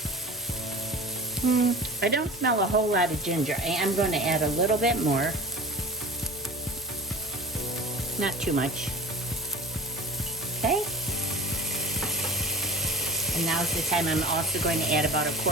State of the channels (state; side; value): normal; both; correlation 0.39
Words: I don't smell a whole lot of ginger. I am going to add a little bit more. Not too much. Okay. And now's the time I'm also going to add about a